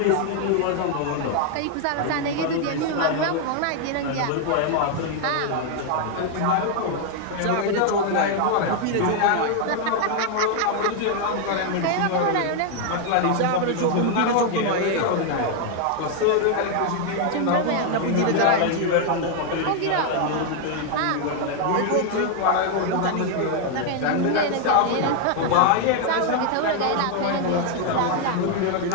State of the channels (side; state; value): both; different; correlation 0.00